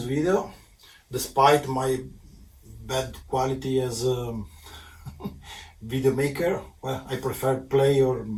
video, despite my bad quality as a video maker. Well, I prefer play or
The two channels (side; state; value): both; identical; correlation 1.00